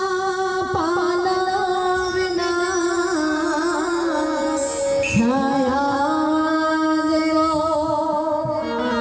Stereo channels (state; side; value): identical; both; correlation 1.00